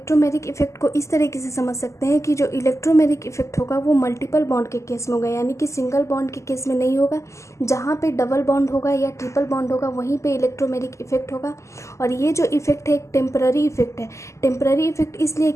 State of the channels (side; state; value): right; late; 0.14 ms